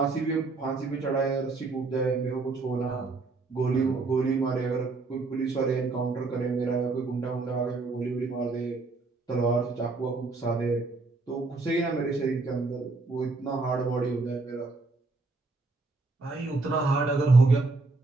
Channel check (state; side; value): quieter; left; 3.7 dB